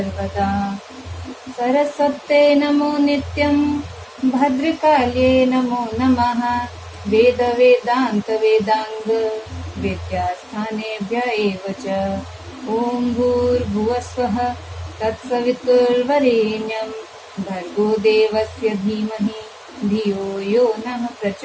सरस्वते नमो नित्यं भद्रकाल्ये नमो नमः वेद वेदांत वेदांग विद्यास्थानेभ्य एव च। ओम भूर्भुवस्वः तत्सवितुर्वरेण्यं भर्गो देवस्य धीमहि धियो यो नः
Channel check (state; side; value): identical; both; correlation 1.00